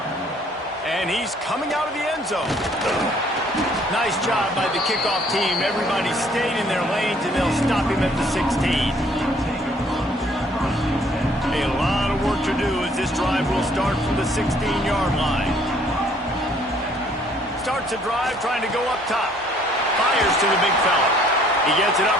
And he's coming out of the end zone. Nice job by the kickoff team. Everybody stayed in their lanes, and they'll stop him at the 16. A lot of work to do as this drive will start from the 16-yard line. Starts a drive trying to go up top. Fires to the big fella. He gets it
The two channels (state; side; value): normal; both; correlation 0.61